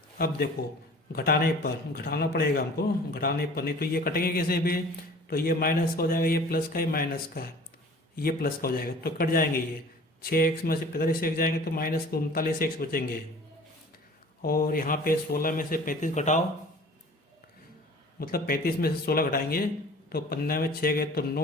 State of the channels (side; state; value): both; normal; correlation 0.46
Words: अब देखो घटाने पर, घटाना पड़ेगा हमको, घटाने पर नहीं तो ये कटेंगे कैसे भी? तो ये माइनस का हो जाएगा, ये प्लस का, ये माइनस का, ये प्लस का हो जाएगा, तो कट जाएंगे। ये 6x में से 45x जाएंगे तो माइनस 39x बचेंगे, और यहाँ पे 16 में से 35 घटाओ मतलब 35 में से 16 घटाएंगे तो 15 में 6 गए तो